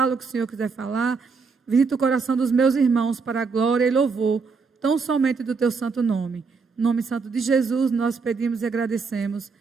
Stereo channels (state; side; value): quieter; left; 4.9 dB